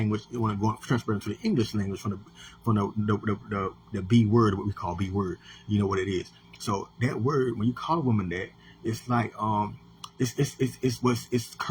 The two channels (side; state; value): both; identical; correlation 1.00